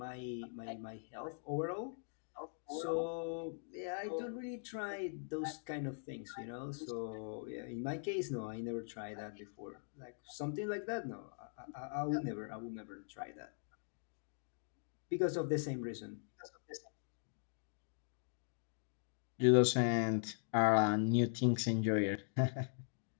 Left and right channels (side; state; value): right; silent; digital silence